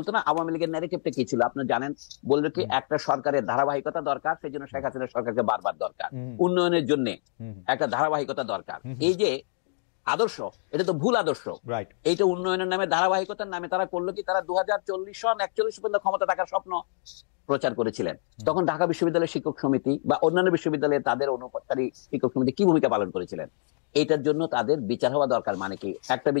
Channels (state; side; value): silent; right; digital silence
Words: না আওয়ামী লীগের ন্যারেটিভটা কি ছিল? আপনি জানেন, বলবে কি একটা সরকারের ধারাবাহিকতা দরকার, সেই জন্য শেখ হাসিনার সরকারকে বারবার দরকার, উন্নয়নের জন্য একটা ধারাবাহিকতা দরকার। এই যে আদর্শ, এটা তো ভুল আদর্শ। এইটা উন্নয়নের নামে, ধারাবাহিকতার নামে তারা করলো কি, তারা 2040 সন 41 পর্যন্ত ক্ষমতা থাকার স্বপ্ন প্রচার করেছিলেন। তখন ঢাকা বিশ্ববিদ্যালয়ের শিক্ষক সমিতি বা অন্যান্য বিশ্ববিদ্যালয়ে তাদের অনুপাতকারী শিক্ষক সমিতি কি ভূমিকা পালন করেছিলেন? এটার জন্য তাদের বিচার হওয়া দরকার। মানে কি? একটা